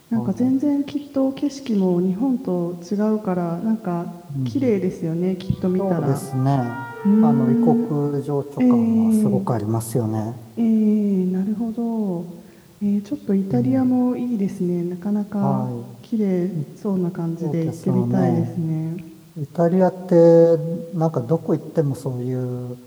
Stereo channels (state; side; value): identical; both; correlation 1.00